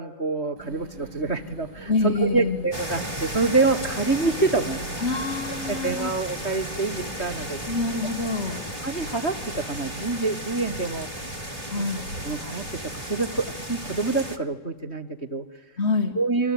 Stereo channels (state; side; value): late; right; 3.1 ms